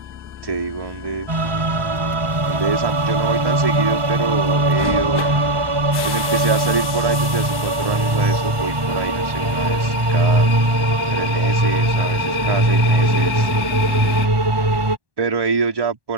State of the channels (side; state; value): left; late; 1.1 ms